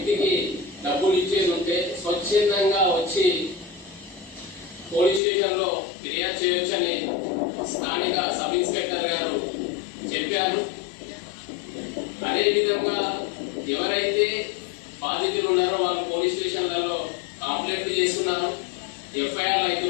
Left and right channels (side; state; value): right; drops out; at 5.2 s